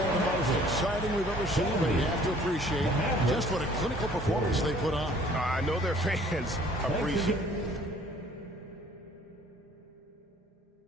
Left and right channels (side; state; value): both; normal; correlation 0.55